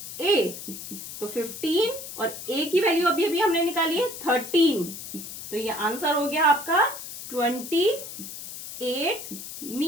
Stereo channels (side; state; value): left; noise; hiss, 10 dB below the sound